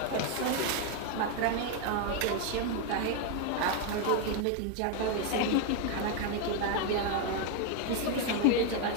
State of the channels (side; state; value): both; different; correlation 0.01